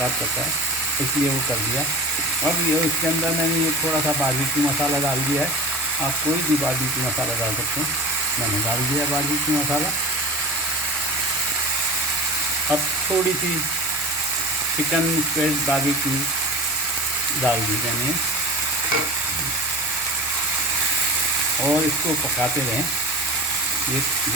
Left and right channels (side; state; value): both; normal; correlation 0.34